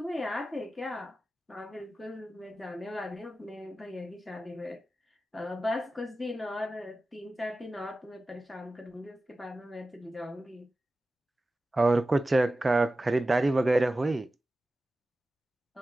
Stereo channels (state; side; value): normal; both; correlation 0.95